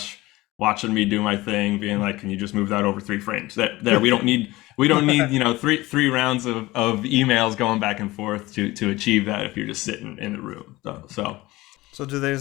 watching me do my thing, being like, can you just move that over 3 frames? There we don't need three rounds of emails going back and forth to achieve that if you're just sitting in the room. So do they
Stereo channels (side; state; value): right; quieter; 19.5 dB